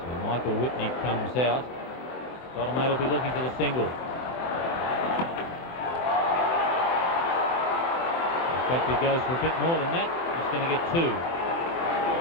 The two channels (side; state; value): right; late; 23 ms